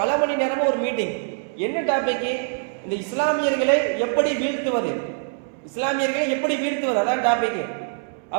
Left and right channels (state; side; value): silent; left; 61 dB below the other